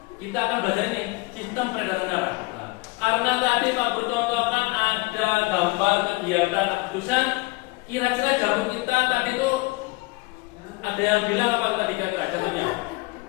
kita akan belajar ini sistem peredaran darah. Nah, karena tadi Pak Guru contohkan ada gambar kegiatan akupunktur, kira-kira jantung kita tadi itu ada yang bilang apa tadi kira-kira jantungnya?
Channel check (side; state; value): right; quieter; 23.4 dB